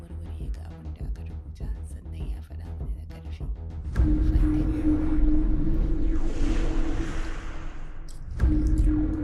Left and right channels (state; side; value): identical; both; correlation 1.00